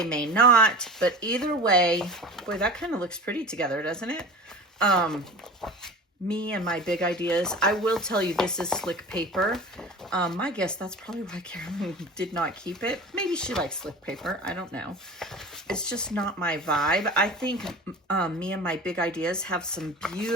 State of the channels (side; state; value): both; normal; correlation 0.36